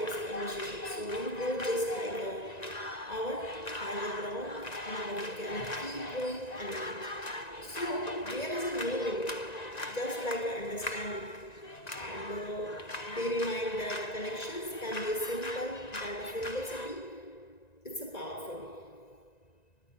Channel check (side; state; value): right; late; 1.9 ms